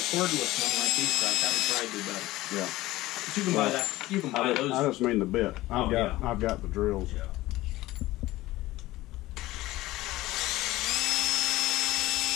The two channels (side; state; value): right; quieter; 17.5 dB